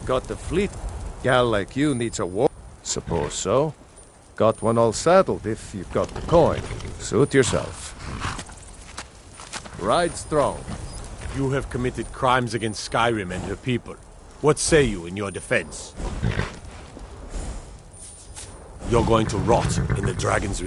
Got the fleet. Gal like you needs a war. Suppose so. Got one all saddled if you've got the coin. Suit yourself. Ride strong. You have committed crimes against Skyrim and her people. What say you in your defense? You're going to rot in the Dragon's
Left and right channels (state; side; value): identical; both; correlation 1.00